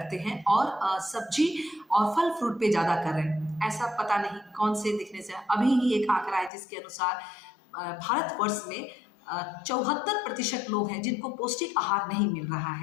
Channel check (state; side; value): drops out; right; at 6.5 s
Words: हैं और सब्जी और फल फ्रूट पे ज्यादा कर रहे हैं। ऐसा पता नहीं कौन से दिखने से अभी ही एक आंकड़ा है जिसके अनुसार भारतवर्ष में 74% लोग हैं जिनको पौष्टिक आहार नहीं मिल रहा